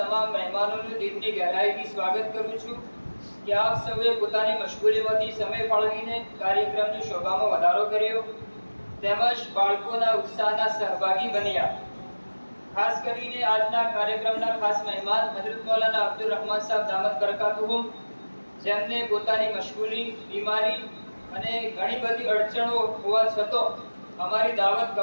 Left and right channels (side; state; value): both; inverted; correlation -1.00